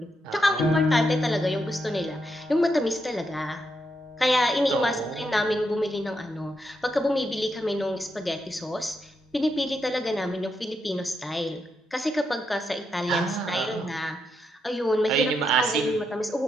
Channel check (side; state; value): both; normal; correlation 0.81